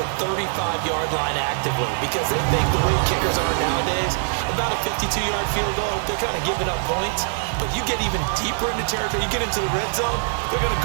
35-yard line actively because they think the way kickers are nowadays, about a 52-yard field goal, they're kind of giving up points. But you get even deeper into territory, you get into the red zone, they're going to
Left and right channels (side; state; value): left; silent; digital silence